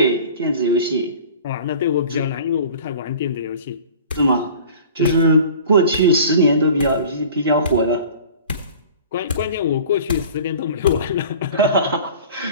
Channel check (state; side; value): inverted; both; correlation -0.43